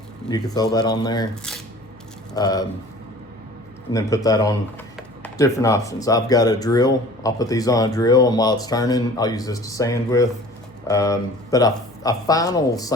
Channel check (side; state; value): left; noise; hum, 30 dB below the sound